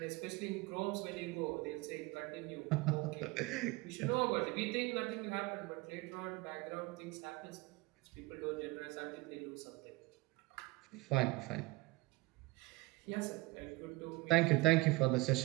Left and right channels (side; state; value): left; quieter; 22.4 dB